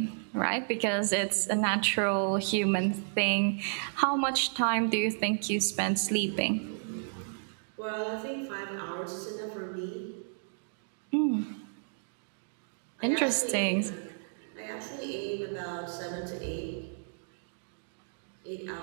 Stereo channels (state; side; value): silent; left; digital silence